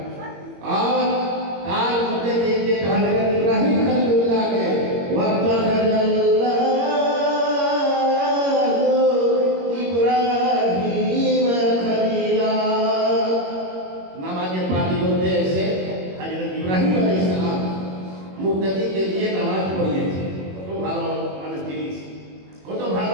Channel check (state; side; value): late; left; 21 ms